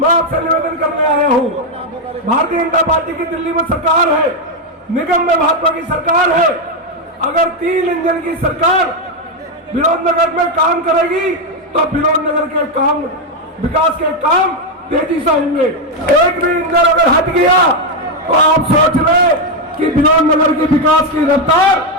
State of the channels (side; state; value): both; normal; correlation 0.04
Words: आपसे निवेदन करने आया हूँ, भारतीय जनता पार्टी की दिल्ली में सरकार है, निगम में भाजपा की सरकार है। अगर 3 इंजन की सरकार विनोद नगर में काम करेगी, तो विनोद नगर के काम, विकास के काम तेजी से होंगे। एक भी इंजन अगर हट गया, तो आप सोच रहे कि विनोद नगर के विकास की रफ्तार